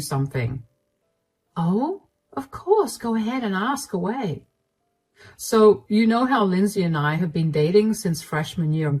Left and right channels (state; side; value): identical; both; correlation 1.00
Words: Oh, of course. Go ahead and ask away. So, you know how Lindsay and I have been dating since freshman year in